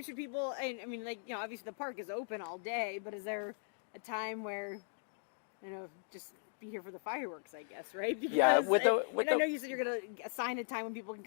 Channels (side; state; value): right; silent; digital silence